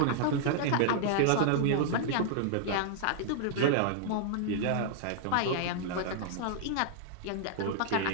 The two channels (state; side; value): different; both; correlation -0.01